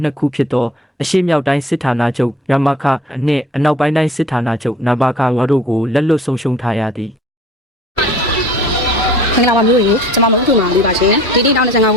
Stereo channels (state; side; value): normal; both; correlation 0.49